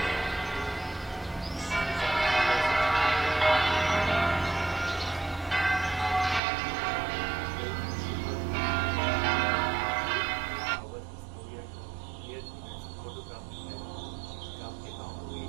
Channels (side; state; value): left; drops out; at 6.4 s